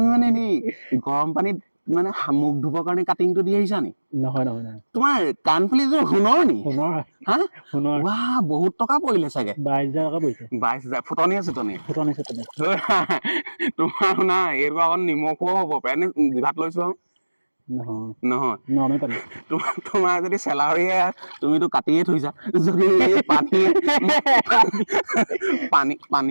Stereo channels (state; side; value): inverted; both; correlation -1.00